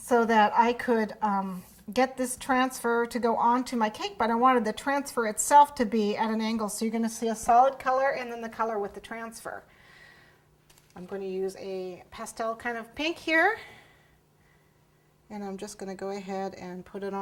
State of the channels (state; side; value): identical; both; correlation 1.00